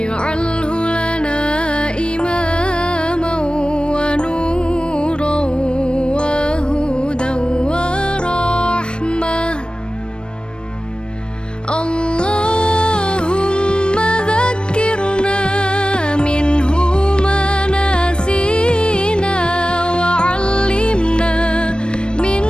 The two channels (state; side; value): late; right; 0.054 ms